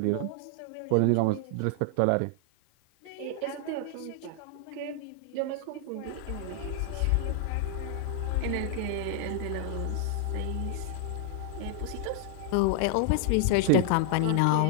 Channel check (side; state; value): both; different; correlation 0.00